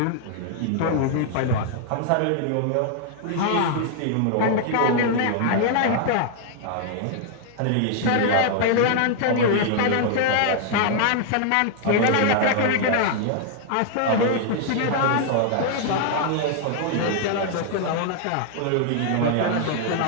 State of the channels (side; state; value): both; different; correlation 0.00